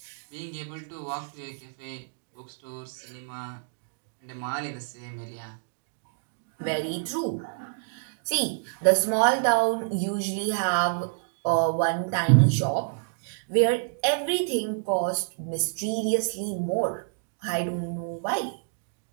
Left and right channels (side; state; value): left; silent; digital silence